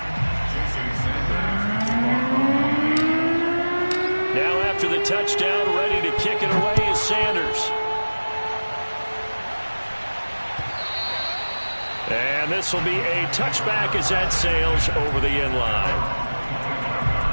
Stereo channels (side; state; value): both; inverted; correlation -1.00